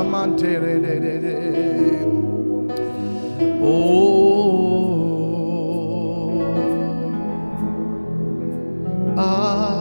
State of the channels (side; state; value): both; inverted; correlation -1.00